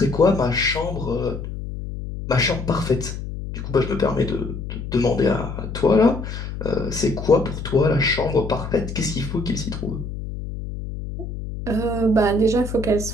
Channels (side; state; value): left; noise; hum, 7 dB below the sound